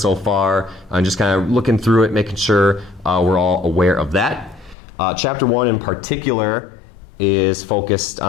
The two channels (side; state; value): right; drops out; at 4.8 s